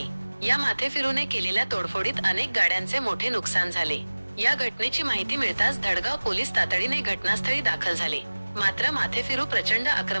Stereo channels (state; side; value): inverted; both; correlation -1.00